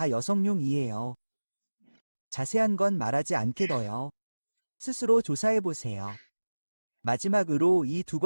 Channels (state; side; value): inverted; both; correlation -1.00